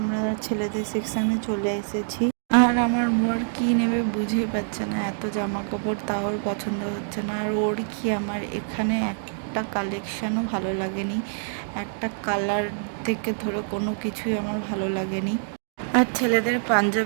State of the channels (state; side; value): silent; left; digital silence